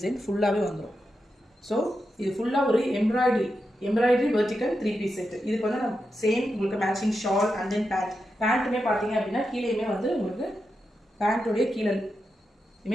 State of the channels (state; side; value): normal; both; correlation 0.88